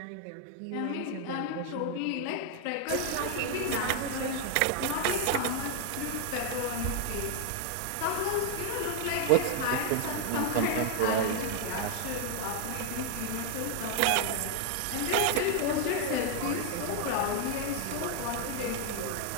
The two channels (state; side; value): different; both; correlation 0.00